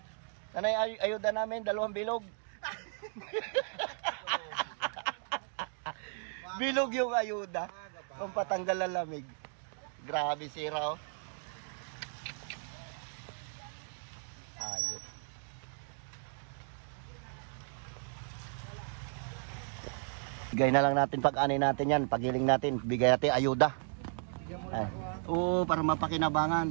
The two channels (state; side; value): silent; left; 54 dB below the other